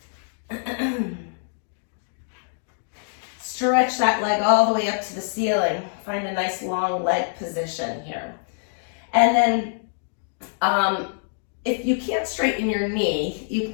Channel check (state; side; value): silent; right; digital silence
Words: Stretch that leg all the way up to the ceiling. Find a nice long leg position here. And then if you can't straighten your knee, you